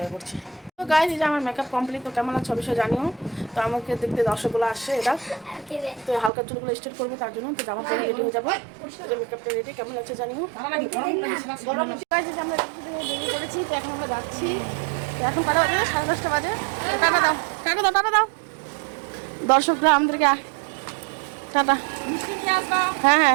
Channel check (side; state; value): left; drops out; at 6.3 s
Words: করছি। তো গাইস, এই যে আমার মেকআপ কমপ্লিট। তো কেমন আছে অবশ্যই জানিও। তো আমাকে দেখতে দর্শকগুলো আসছে, এটা তো হালকা চুলগুলো স্ট্রেট করবো, তার জন্য তো জামা পরে রেডি হয়ে যাবো। মেকআপটা রেডি, কেমন আছে জানিও। আমরা বেরিয়ে পড়েছি। তো এখন আমরা যাচ্ছি। তো এখন কটা বাজে? 10:30 বাজে। টাটা দাও, টাটা দাও, টাটা দাও দর্শকরা আমাদেরকে। টাটা। হ্যাঁ